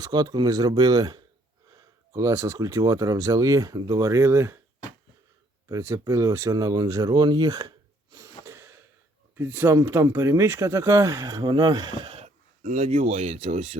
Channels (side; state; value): both; normal; correlation 0.65